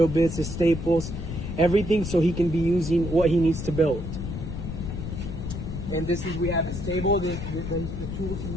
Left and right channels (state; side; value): noise; left; rumble, 6 dB below the sound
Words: bits, his staples, everything, so he can be using what he needs to build. And this is, we have his table, the tools he